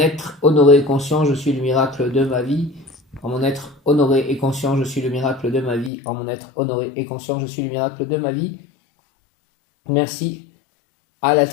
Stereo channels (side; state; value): right; drops out; at 5.9 s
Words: honoré et conscient, je suis le miracle de ma vie, en mon être honoré et conscient, je suis le miracle de ma vie, en mon être honoré et conscient, je suis le miracle de ma vie. Merci à la